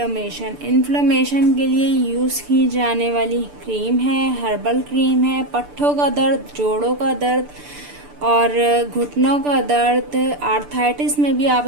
के लिए यूज़ की जाने वाली क्रीम है, हर्बल क्रीम है। पट्ठों का दर्द, जोड़ों का दर्द और घुटनों का दर्द, आर्थराइटिस में भी आप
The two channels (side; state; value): left; late; 6.8 ms